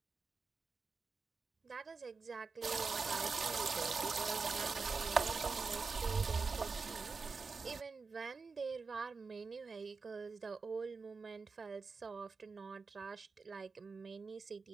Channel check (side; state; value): left; quieter; 4.6 dB